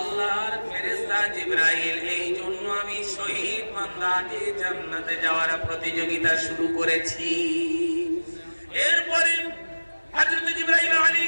ফেরেশতা জিবরাইল, এই জন্য আমি শহীদ বান্দাকে জান্নাতে যাওয়ার প্রতিযোগিতা শুরু করেছি। এরপরে হযরত জিবরাইল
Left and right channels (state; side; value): inverted; both; correlation -1.00